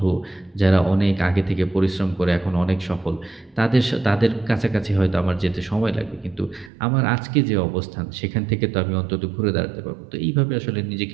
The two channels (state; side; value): drops out; left; at 6.7 s